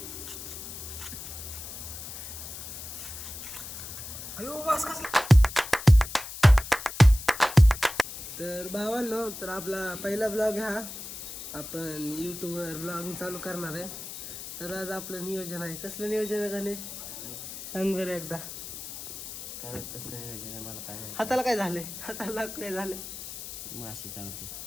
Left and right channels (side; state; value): left; noise; hiss, 10 dB below the sound